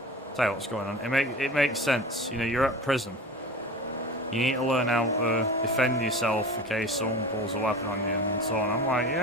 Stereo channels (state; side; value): normal; both; correlation 0.35